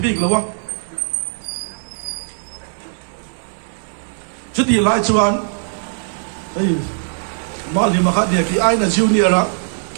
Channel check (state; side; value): silent; left; digital silence